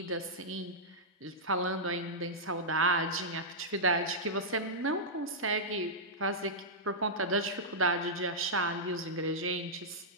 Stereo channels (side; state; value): both; normal; correlation -0.11